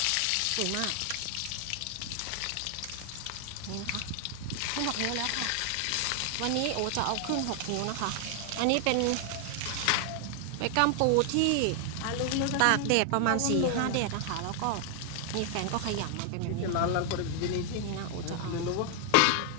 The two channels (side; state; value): both; different; correlation 0.00